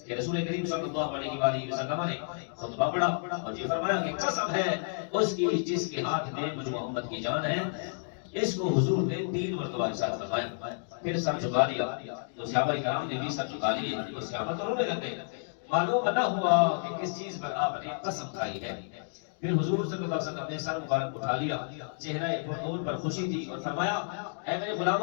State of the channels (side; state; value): right; silent; digital silence